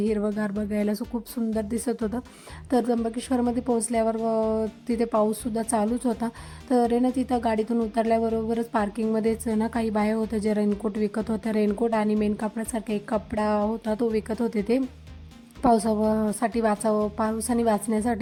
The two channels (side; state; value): both; identical; correlation 1.00